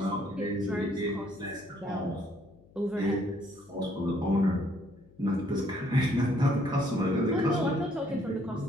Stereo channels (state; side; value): noise; left; hum, 26 dB below the sound